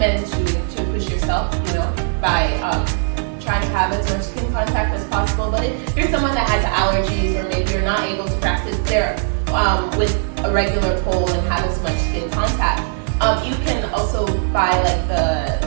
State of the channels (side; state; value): left; silent; 62 dB below the other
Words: to push yourself, you know, by trying to have as much skin contact as possible. But if you're someone that has allergies, or maybe you're not able to practice there with a regular pole and have as much skin contact, you can also buy like the